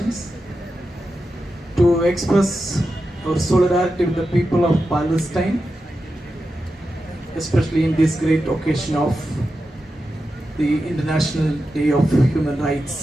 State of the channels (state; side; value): normal; both; correlation 0.90